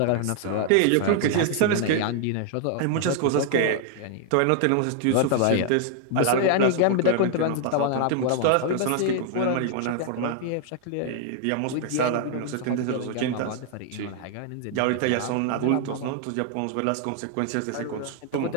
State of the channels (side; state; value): both; different; correlation 0.00